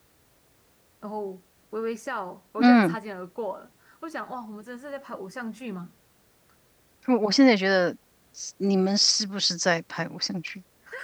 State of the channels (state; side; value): identical; both; correlation 1.00